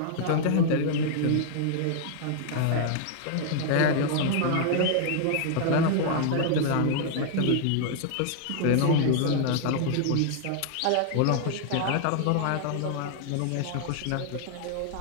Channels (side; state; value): both; different; correlation -0.01